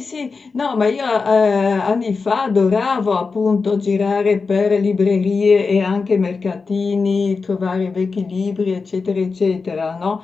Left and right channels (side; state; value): right; quieter; 4.5 dB